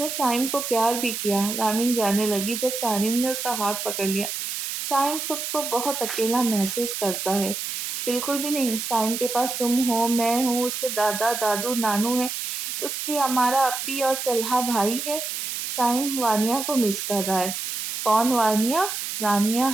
سائم کو پیار بھی کیا، رامین جانے لگی جب سارم نے اس کا ہاتھ پکڑ لیا۔ سائم خود کو بہت اکیلا محسوس کرتا ہے۔ بالکل بھی نہیں، سائم کے پاس تم ہو، میں ہوں، اس کے دادا دادو نانو ہے، اس کی ہمارا اپی اور طلحہ بھائی ہے۔ سائم وانیا کو مس کر رہا ہے۔ کون وانیا؟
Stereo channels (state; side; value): noise; right; hiss, 4 dB below the sound